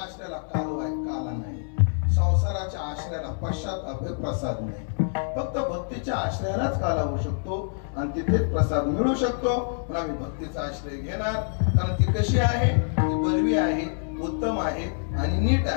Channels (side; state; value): right; silent; 61 dB below the other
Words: काल आहे, काला नाही. संसाराच्या आश्रयाला पश्चाताप प्रसाद नाही. फक्त भक्तीच्या आश्रयालाच काला होऊ शकतो आणि तिथेच प्रसाद मिळू शकतो. पण आम्ही भक्तीचा आश्रय घेणार, कारण ती कशी आहे? ती बलवी आहे, उत्तम आहे आणि नीट